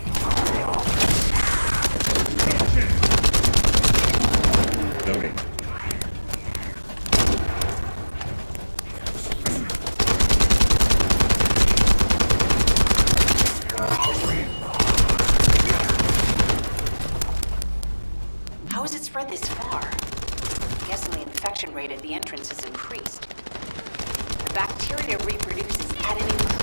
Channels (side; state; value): both; inverted; correlation -1.00